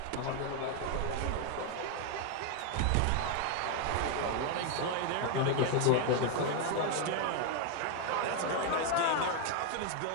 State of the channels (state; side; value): different; both; correlation 0.00